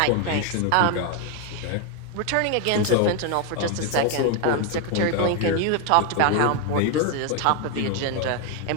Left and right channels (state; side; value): different; both; correlation 0.01